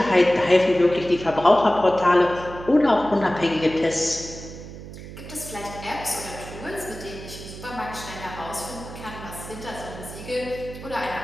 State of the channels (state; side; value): noise; right; hum, 13 dB below the sound